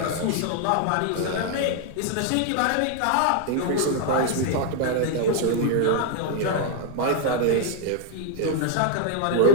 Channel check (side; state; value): both; different; correlation 0.00